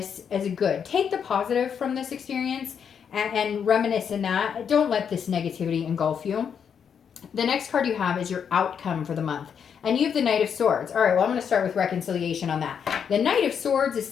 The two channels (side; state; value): right; quieter; 7.4 dB